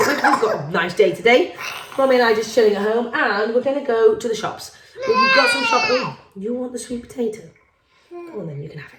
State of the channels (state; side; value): identical; both; correlation 1.00